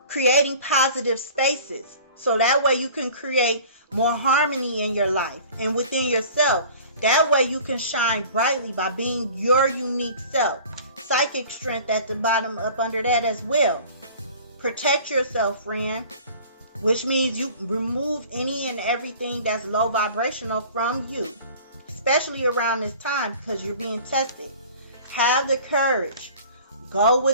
creating positive spaces, so that way you can create more harmony in your life and within yourself. That way you can shine brightly by being your unique self. Psychic strength at the bottom, up under that as well. Protect yourself, friend, which means you remove any and everything that's low vibrational from you, especially around this time because you're being tested. Have the courage. Go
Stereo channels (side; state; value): both; inverted; correlation -0.45